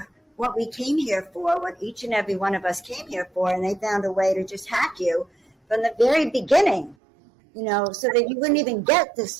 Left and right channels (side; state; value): left; drops out; at 7.0 s